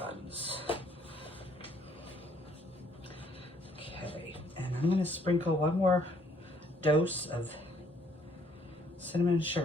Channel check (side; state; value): both; normal; correlation 0.64